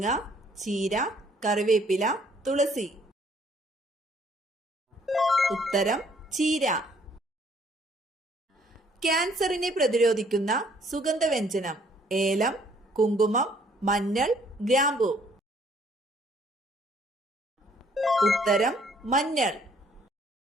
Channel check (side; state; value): both; normal; correlation 0.63